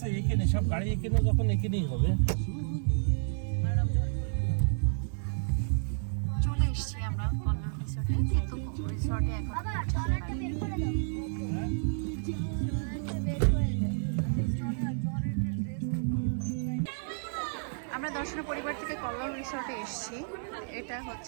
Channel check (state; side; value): silent; left; digital silence